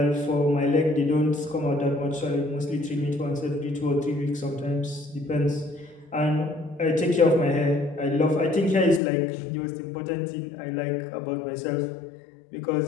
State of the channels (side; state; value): right; drops out; at 9.0 s